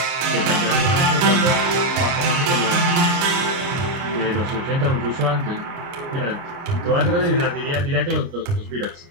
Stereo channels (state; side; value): late; left; 30 ms